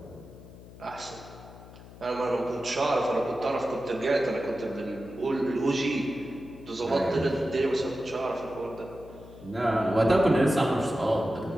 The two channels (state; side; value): noise; left; hum, 18 dB below the sound